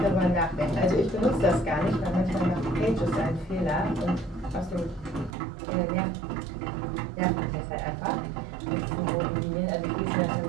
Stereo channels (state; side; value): drops out; left; at 5.4 s